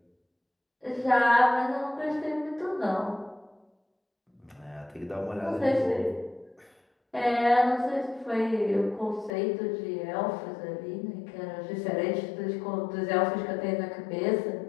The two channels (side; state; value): right; drops out; at 9.3 s